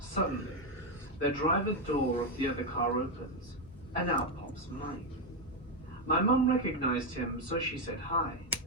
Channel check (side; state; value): both; normal; correlation 0.06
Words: Suddenly, the driver door of the other car opens, and out pops Mike. My mum recognized him, so she said hi,